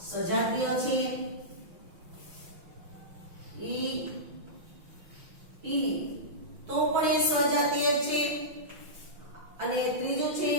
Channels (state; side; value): late; left; 6.2 ms